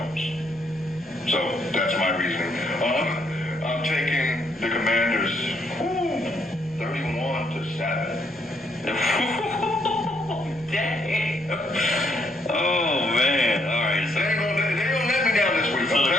So that's my reasoning. I'm taking the Commanders 31-7. Dang. Oh, man. All right. So They ain't gonna let me down this week. the I'm telling you.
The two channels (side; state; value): both; normal; correlation 0.72